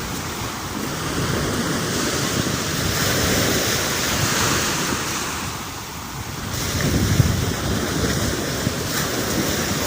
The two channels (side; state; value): both; identical; correlation 1.00